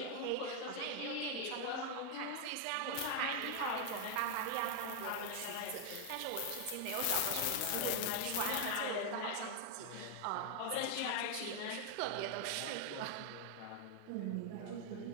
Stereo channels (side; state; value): both; different; correlation 0.00